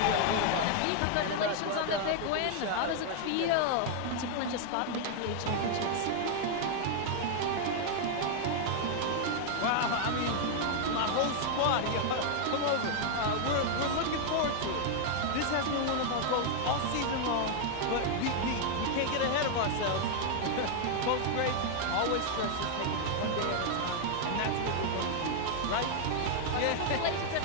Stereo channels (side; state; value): both; different; correlation 0.00